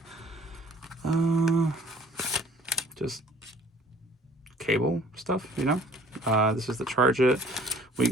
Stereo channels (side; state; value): both; normal; correlation 0.53